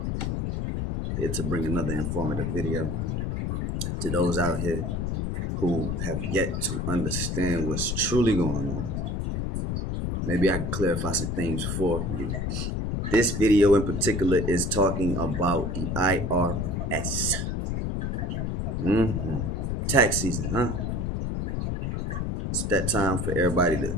Here to bring another informative video to those out here who have yet to understand what's truly going on. Maybe I can clarify some things for you. This video in particular is talking about the IRS. Tax season, huh? It's that time for everybody to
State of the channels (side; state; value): left; noise; rumble, 1 dB below the sound